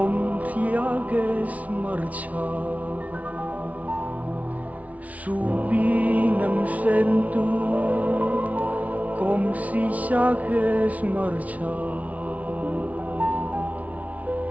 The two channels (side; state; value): left; late; 0.069 ms